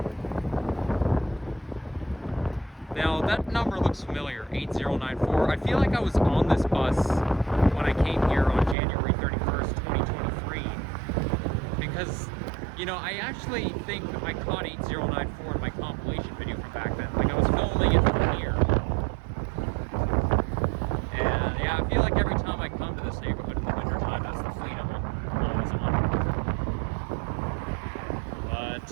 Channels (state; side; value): drops out; left; at 8.8 s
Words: Now, that number looks familiar, 8094. I feel like I was on this bus when I came here on January 31st, 2023. Because, you know, I actually think I caught 8094 in my compilation video from back then. Like, I was filming it from here. And, yeah, I feel like every time I come to this neighborhood in the wintertime, that's the fleet I'm always on.